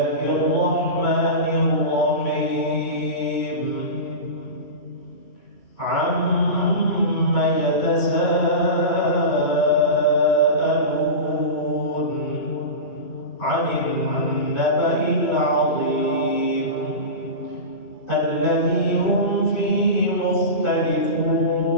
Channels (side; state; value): right; late; 2.5 ms